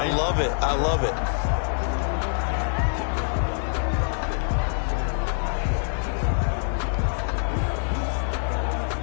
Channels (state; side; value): silent; right; 62 dB below the other